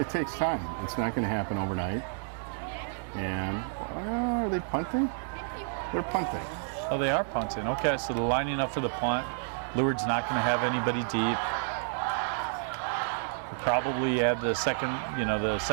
takes time. It's not going to happen overnight. And are they punting? They're punting. Oh, they are punting. Okay, so they're lining up for the punt. Lourdes not going to have anybody deep. We'll probably add the second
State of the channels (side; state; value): left; silent; digital silence